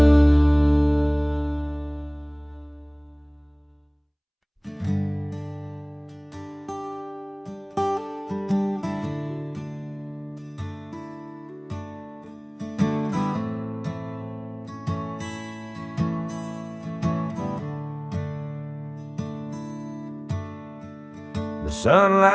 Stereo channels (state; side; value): identical; both; correlation 1.00